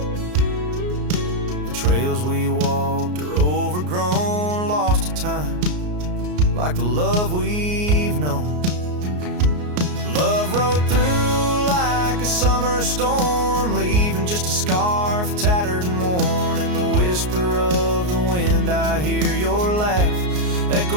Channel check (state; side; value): late; left; 33 ms